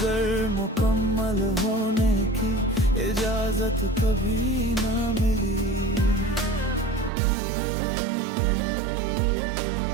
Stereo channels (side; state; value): left; drops out; at 7.1 s